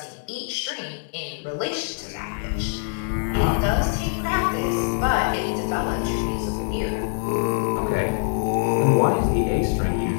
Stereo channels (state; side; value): silent; right; digital silence